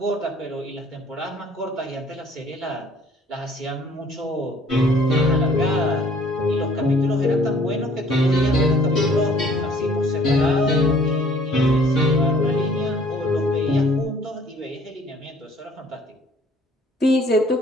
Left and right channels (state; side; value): normal; both; correlation 0.57